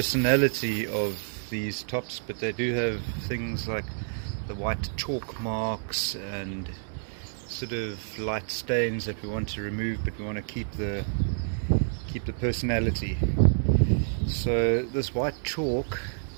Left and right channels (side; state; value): left; silent; 59 dB below the other